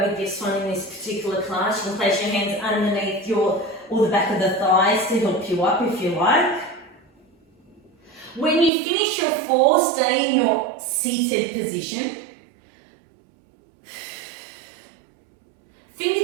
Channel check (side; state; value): left; drops out; at 8.7 s